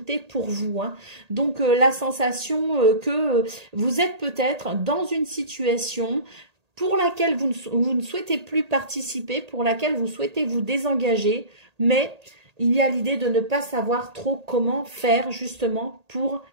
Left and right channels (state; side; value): late; left; 1.8 ms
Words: pour vous, hein. Donc, la sensation que vous êtes peut-être dans une situation pour laquelle vous ne souhaitez plus participer, pour laquelle vous souhaitez vous désengager, mais il y a l'idée de ne pas savoir trop comment faire justement pour